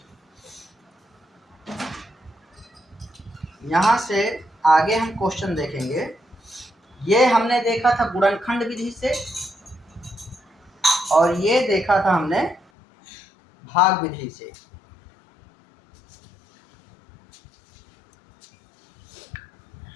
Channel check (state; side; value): drops out; right; at 12.6 s